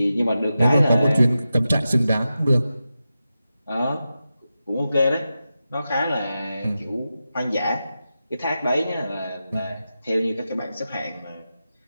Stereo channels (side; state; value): both; inverted; correlation -0.91